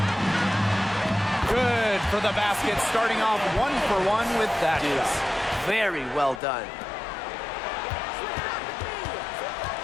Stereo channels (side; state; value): right; drops out; at 6.4 s